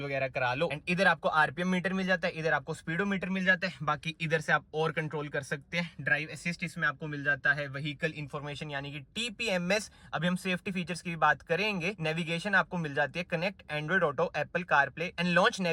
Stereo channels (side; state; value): both; identical; correlation 1.00